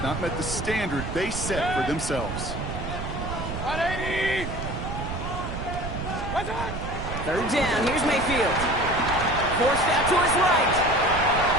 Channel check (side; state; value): right; noise; rumble, 6 dB below the sound